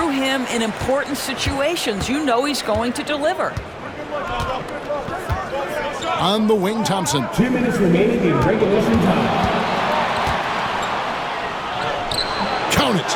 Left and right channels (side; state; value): both; identical; correlation 1.00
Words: him in important situations. You know he's going to deliver. On the wing, Thompson. 2 minutes remaining in regulation time. Count